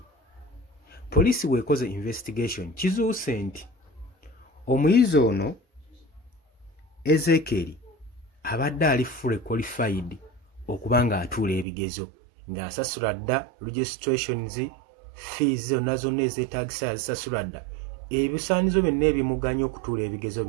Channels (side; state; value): left; drops out; at 11.7 s